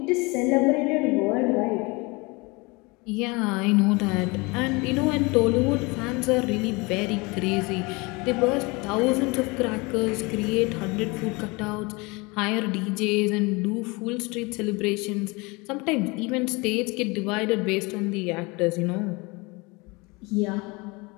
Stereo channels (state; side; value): quieter; right; 26.2 dB